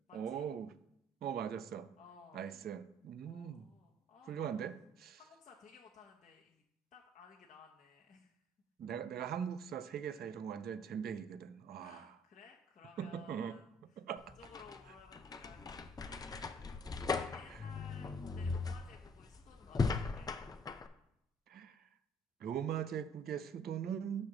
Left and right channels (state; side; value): normal; both; correlation 0.59